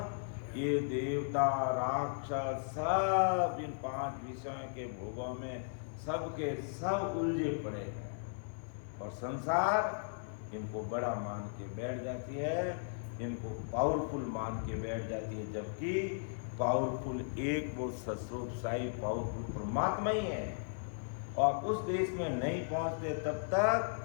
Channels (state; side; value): silent; right; digital silence